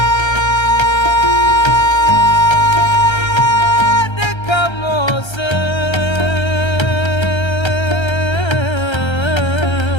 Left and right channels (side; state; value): right; late; 1.3 ms